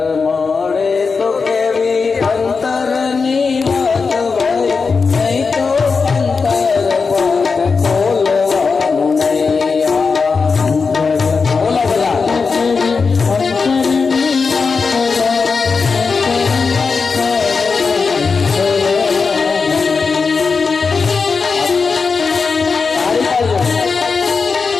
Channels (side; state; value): right; quieter; 4.9 dB